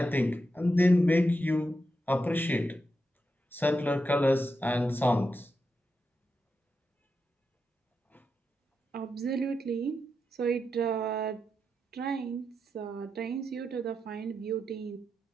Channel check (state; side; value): normal; both; correlation 0.86